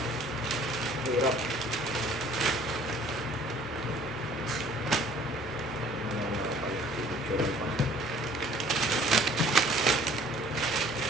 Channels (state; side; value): normal; both; correlation 0.54